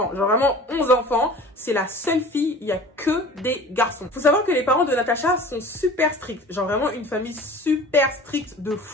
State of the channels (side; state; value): both; normal; correlation 0.42